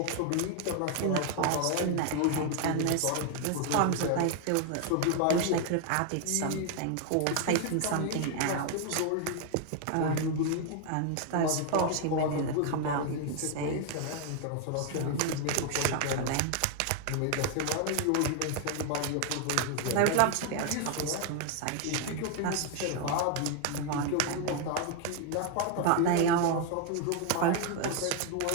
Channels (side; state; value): both; different; correlation 0.01